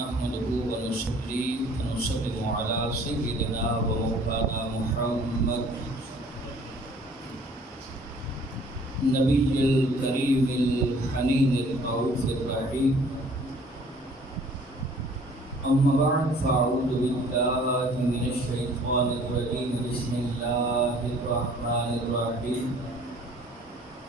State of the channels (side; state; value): both; normal; correlation 0.54